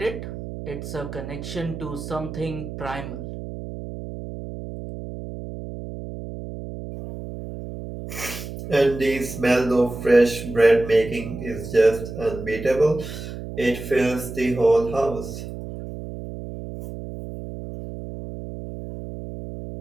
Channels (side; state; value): right; noise; hum, 10 dB below the sound